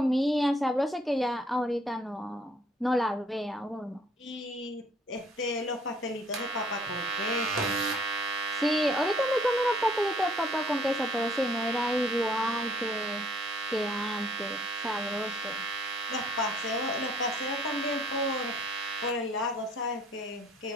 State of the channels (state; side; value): normal; both; correlation 0.61